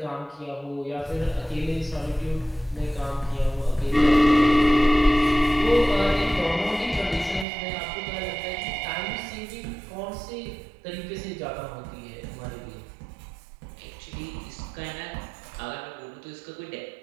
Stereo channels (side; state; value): left; drops out; at 7.5 s